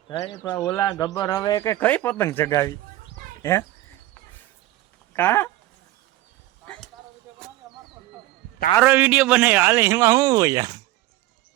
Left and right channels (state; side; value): quieter; left; 16.5 dB